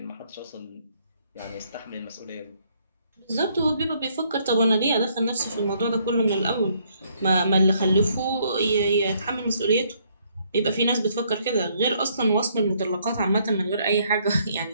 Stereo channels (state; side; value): inverted; both; correlation -0.68